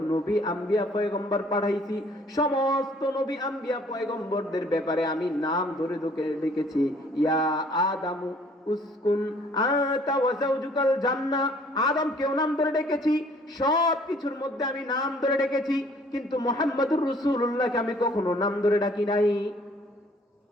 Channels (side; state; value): both; normal; correlation 0.58